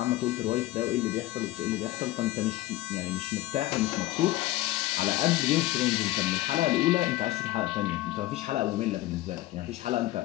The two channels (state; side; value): quieter; right; 16.7 dB